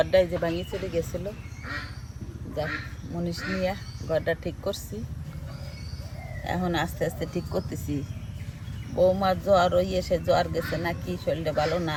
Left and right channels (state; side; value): identical; both; correlation 1.00